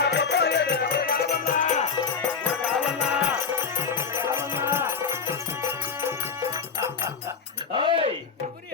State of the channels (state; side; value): quieter; right; 5.8 dB